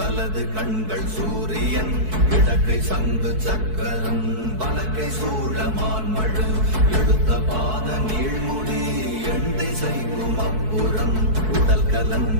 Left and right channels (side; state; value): left; late; 4.6 ms